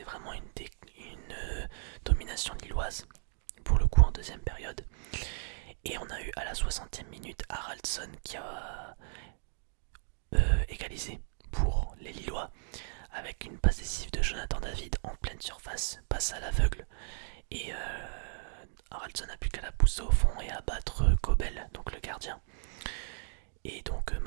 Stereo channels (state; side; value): silent; left; digital silence